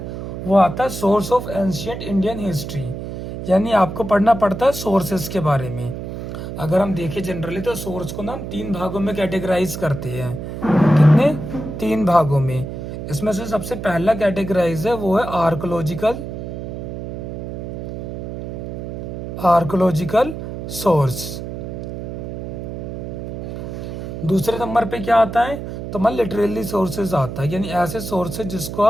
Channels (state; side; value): noise; right; hum, 7 dB below the sound